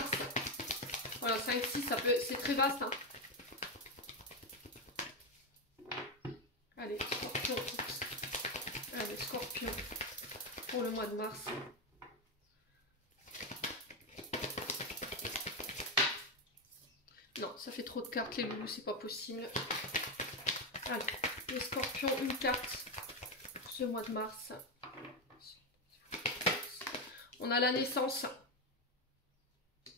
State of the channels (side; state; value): both; normal; correlation 0.08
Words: Voilà, 5-6, c'est très vaste. Hein. Allez, scorpion. Allez, scorpion. Pour le mois de mars. Non, ça fait trop de cartes, les loulous, c'est pas possible. Allez, les scorpions, une carte pour ce mois de mars. On a la naissance.